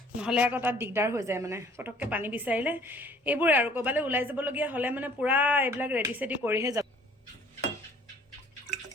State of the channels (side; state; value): both; normal; correlation 0.56